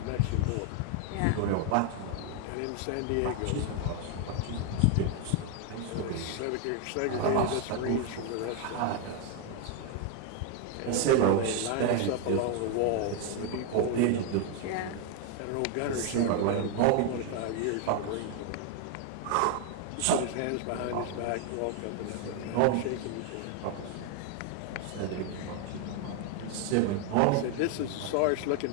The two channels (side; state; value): both; different; correlation 0.01